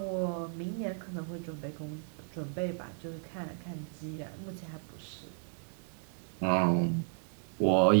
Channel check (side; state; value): left; silent; 55 dB below the other